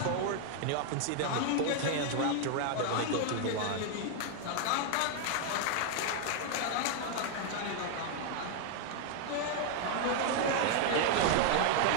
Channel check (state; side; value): different; both; correlation 0.00